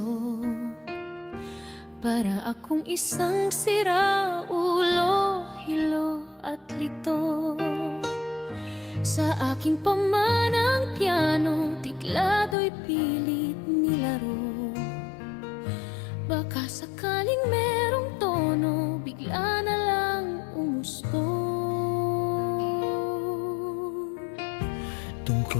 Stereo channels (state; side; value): drops out; right; at 12.6 s